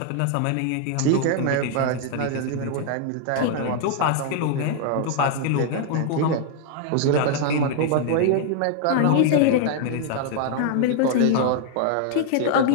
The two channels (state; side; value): different; both; correlation 0.00